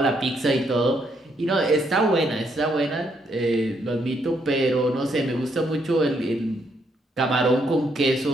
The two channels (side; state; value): both; normal; correlation 0.74